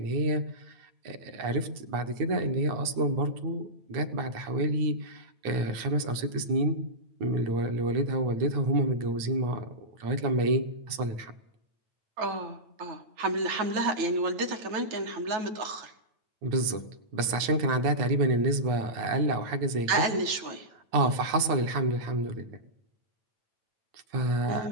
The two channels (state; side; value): late; left; 9.1 ms